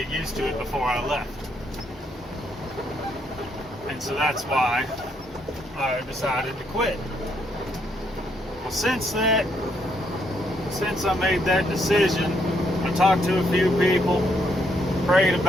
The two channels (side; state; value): both; normal; correlation 0.74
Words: used to it before I left. And so that's why I decided to quit. Well, since I made that decision, I talked to a few people, prayed